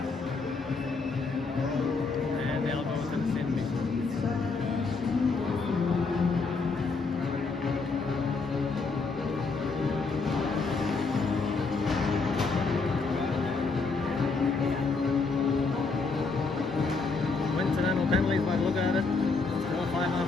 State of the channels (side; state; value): right; quieter; 4.2 dB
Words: And they'll go to the stand meeting. Coincidental penalties by the look at it. Still